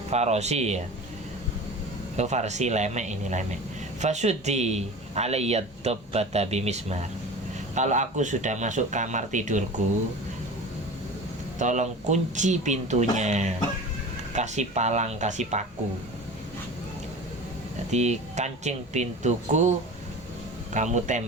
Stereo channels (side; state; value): both; normal; correlation 0.35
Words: ya. Oh, farsi lemek, ini lemek. Fasuddi alayya dabbata bimismar. Kalau aku sudah masuk kamar tidurku, tolong kunci pintunya, kasih palang, kasih paku. Jadi kancing pintuku kamu